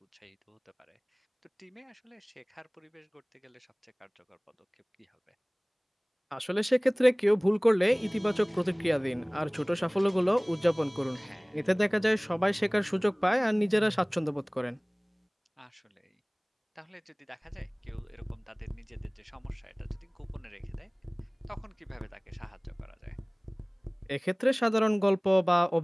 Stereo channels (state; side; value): identical; both; correlation 1.00